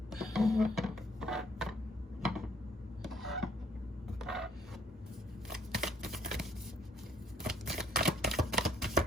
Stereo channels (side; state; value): both; normal; correlation 0.65